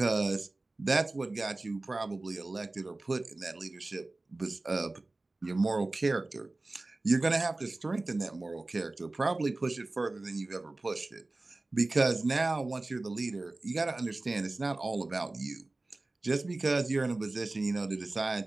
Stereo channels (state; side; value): quieter; left; 3.1 dB